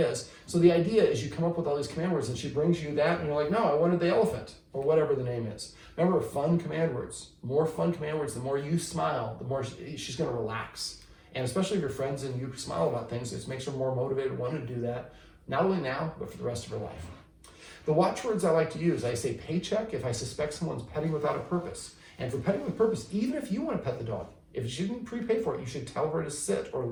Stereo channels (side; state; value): both; identical; correlation 1.00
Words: So the idea is you come up with all these command words and she brings you that and you're like, no, I wanted the elephant, or whatever the name is. Remember, fun command words. More fun command words, the more you smile, the more she's going to relax. And especially if you're friends and you smile about things, it makes her more motivated, want to do that, not only now, but for the rest of her life. The watchwords I like to use, I say paycheck if I suspect someone's petting without a purpose. And for petting with purpose, even if you want to pet the dog, if she didn't prepay for it, you should tell her to sit or